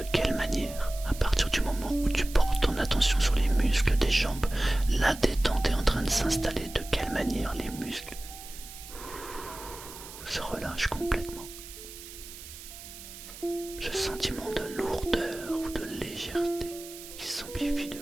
quelle manière, à partir du moment où tu portes ton attention sur les muscles des jambes, la détente est en train de s'installer, de quelle manière les muscles se relâchent complètement. Ce sentiment de lourdeur ou de légèreté qui s'amplifie de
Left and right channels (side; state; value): right; noise; hiss, 14 dB below the sound